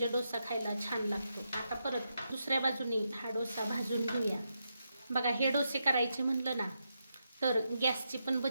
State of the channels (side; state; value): both; inverted; correlation -0.84